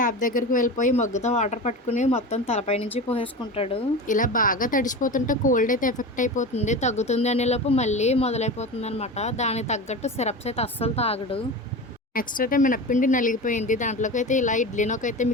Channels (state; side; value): normal; both; correlation 0.28